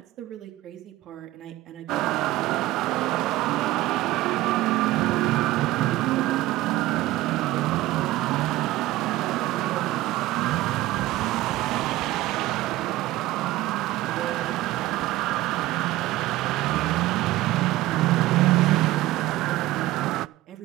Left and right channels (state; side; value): quieter; left; 17.0 dB